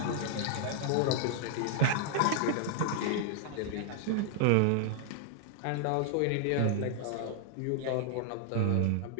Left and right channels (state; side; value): different; both; correlation 0.00